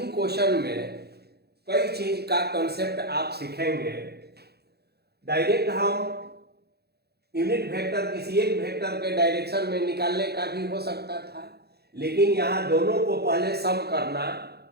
क्वेश्चन में कई चीज का कंसेप्ट आप सीखेंगे। डायरेक्ट हम यूनिट वेक्टर किसी एक वेक्टर के डायरेक्शन में निकालने का भी हो सकता था, लेकिन यहाँ दोनों को पहले सम करना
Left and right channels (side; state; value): left; late; 0.47 ms